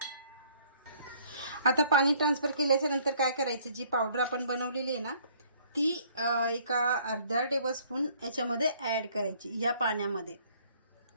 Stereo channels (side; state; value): both; inverted; correlation -0.60